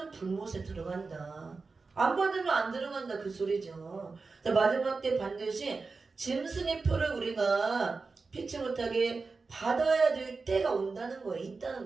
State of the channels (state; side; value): quieter; left; 4.2 dB